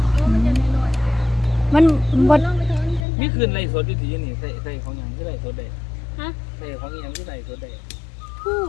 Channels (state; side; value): drops out; right; at 3.1 s